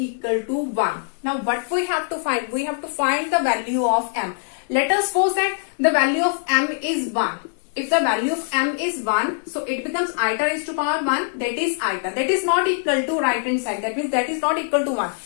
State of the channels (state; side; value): silent; right; digital silence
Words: to 1. Now what we have to find? We have to find the value of m. Let us suppose that the value of m is 1. If the value of m is 1, so it becomes iota raised to power 1. That is iota. That is not equal to right hand side. That means that is not equal to 1.